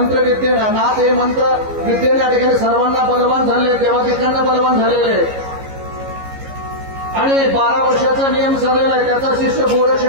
नाथ हे मंत्र विद्येने या ठिकाणी सर्वांना बलवान झाले, देवादिकांना बलवान झालेले. आणि 12 वर्षाचा नियम चाललेला आहे, त्याचा शिष्य गोरक्ष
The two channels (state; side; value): late; left; 15 ms